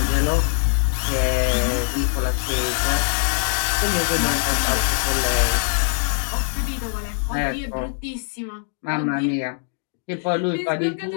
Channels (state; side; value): silent; right; digital silence